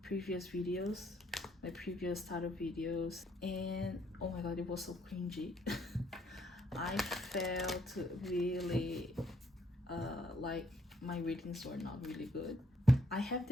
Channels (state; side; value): normal; both; correlation 0.69